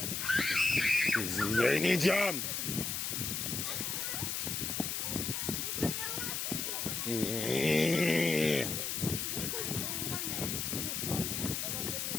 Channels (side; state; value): left; noise; hiss, 1 dB below the sound